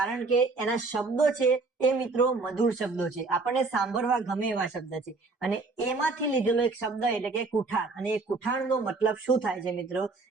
કે એના શબ્દો છે એ મિત્રો મધુર શબ્દો છે, આપણને સાંભળવા ગમે એવા શબ્દ છે. અને એમાંથી લીધેલો એક શબ્દ એટલે કે કુઠાર. અને એ કુઠારનો મતલબ શું થાય છે મિત્રો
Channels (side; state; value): left; quieter; 3.8 dB